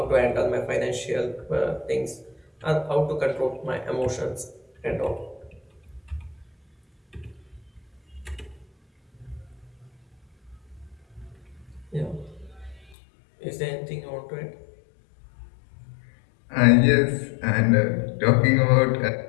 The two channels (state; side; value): drops out; right; at 13.0 s